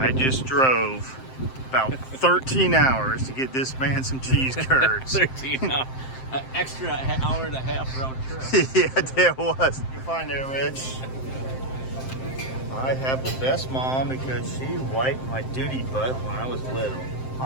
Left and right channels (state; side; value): late; right; 7.7 ms